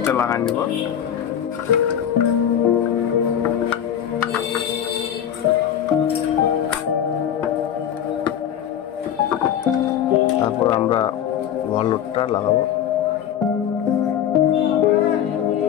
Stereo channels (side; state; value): right; quieter; 9.8 dB